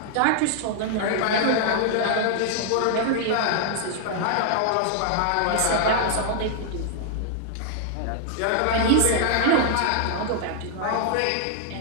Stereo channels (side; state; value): both; different; correlation -0.01